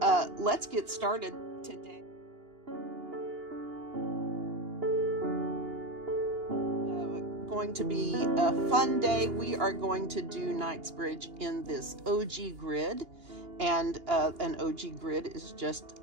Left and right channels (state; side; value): late; left; 2.8 ms